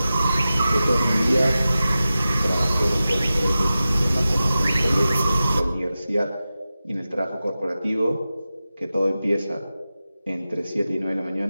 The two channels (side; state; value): both; inverted; correlation -0.94